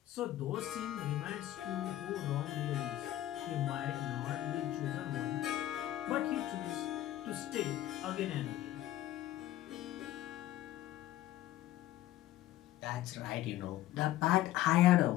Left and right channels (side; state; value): right; quieter; 14.0 dB